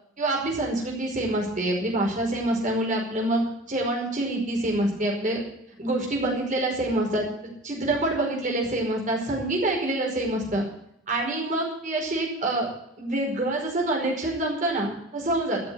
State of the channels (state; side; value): normal; both; correlation 0.39